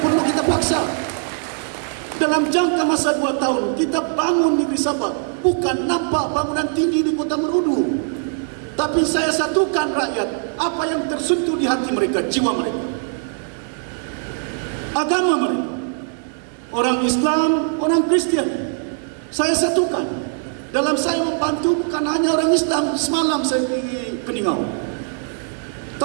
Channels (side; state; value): left; silent; 60 dB below the other